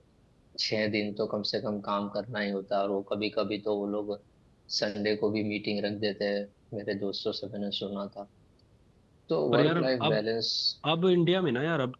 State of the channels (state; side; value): identical; both; correlation 1.00